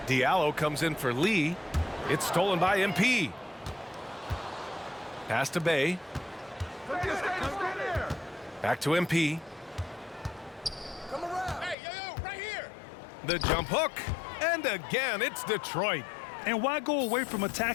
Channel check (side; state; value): right; drops out; at 11.8 s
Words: Diallo comes in for Lee. It's stolen by MP. Pass to Bay. Back to MP. Come around. Hey, yo, right here. The jump hook. And again, it's Detroit. And why go away from